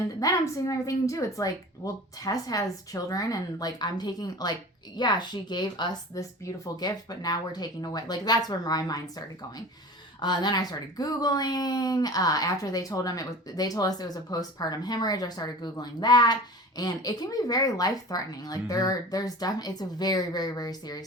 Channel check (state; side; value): normal; both; correlation 0.37